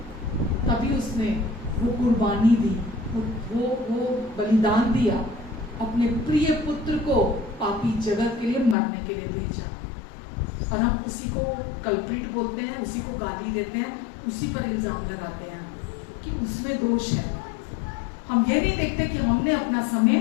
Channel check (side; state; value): right; drops out; at 8.8 s